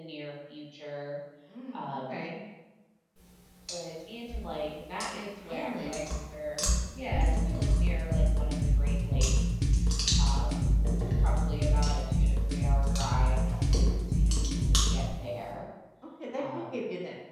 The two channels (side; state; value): both; identical; correlation 1.00